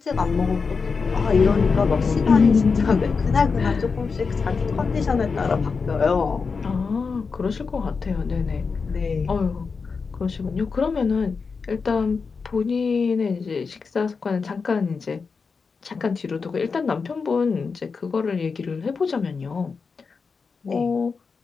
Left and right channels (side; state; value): right; quieter; 5.0 dB